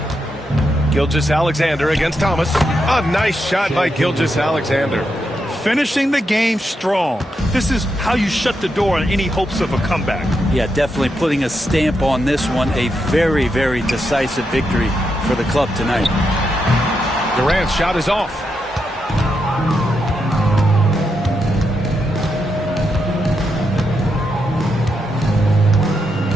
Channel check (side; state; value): both; normal; correlation 0.83